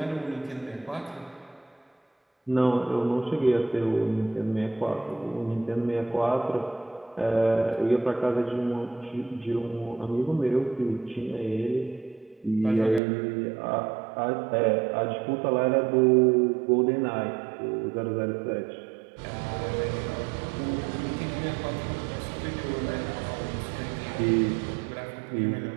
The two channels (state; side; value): drops out; left; at 13.0 s